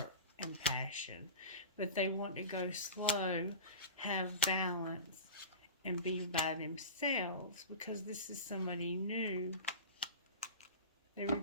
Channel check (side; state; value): both; inverted; correlation -0.33